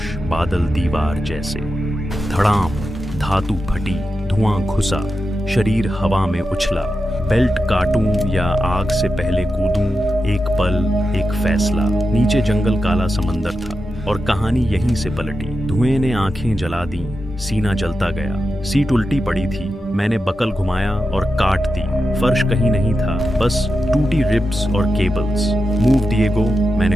बादल दीवार जैसे। धड़ाम, धातु फटी, धुआं घुसा, शरीर हवा में उछला। बेल्ट काटूं या आग से पहले कूदूं, एक पल, एक फैसला। नीचे जंगल, काला समंदर था और कहानी यहीं से पलटी। धुएं ने आंखें जला दी, सीना जलता गया। सीट उल्टी पड़ी थी, मैंने बकल घुमाया और काट दी। फर्श कहीं नहीं था, बस टूटी रिब्स और केबल्स। मूव डिएगो,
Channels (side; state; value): both; normal; correlation 0.89